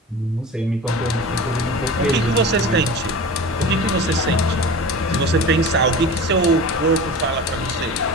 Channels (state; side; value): normal; both; correlation 0.34